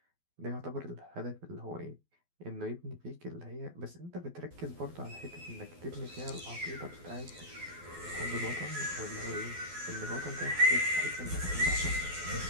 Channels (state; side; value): late; left; 12 ms